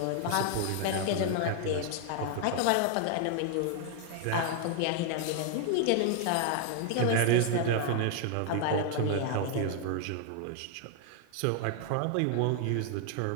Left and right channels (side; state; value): both; different; correlation 0.00